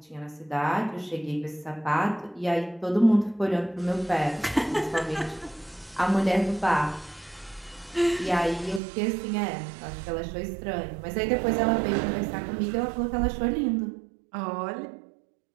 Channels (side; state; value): left; drops out; at 8.8 s